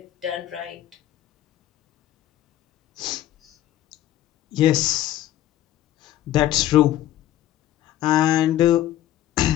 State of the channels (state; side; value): quieter; right; 13.2 dB